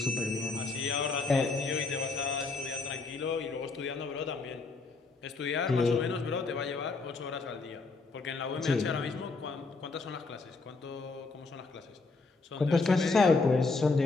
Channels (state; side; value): quieter; right; 3.9 dB